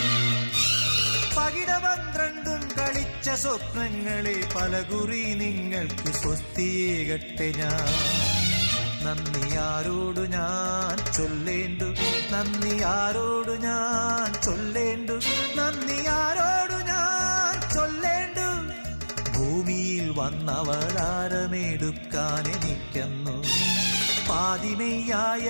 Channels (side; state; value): both; inverted; correlation -1.00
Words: പകിട 12 കളിച്ച സ്വപ്നങ്ങളെ പലകുറി നിങ്ങൾക്ക് സ്വസ്തിയേകട്ടെ ഞാൻ. നന്ദി ആരോടു ഞാൻ ചൊല്ലേണ്ടു, നന്ദി ആരോടു ഞാൻ ചൊല്ലേണ്ടു, നന്ദി ആരോടു ഞാൻ ചൊല്ലേണ്ടു. ഭൂമിയിൽ വന്നവതാരമെടുക്കാൻ എനിക്കെന്നു പാതിമെയ്യായ